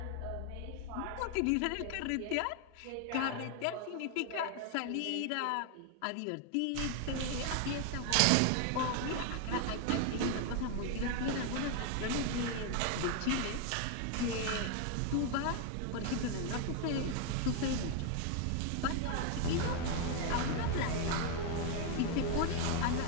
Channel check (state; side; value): different; both; correlation 0.00